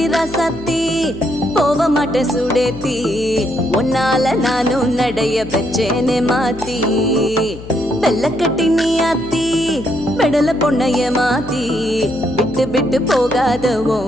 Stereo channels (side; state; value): left; noise; hum, 14 dB below the sound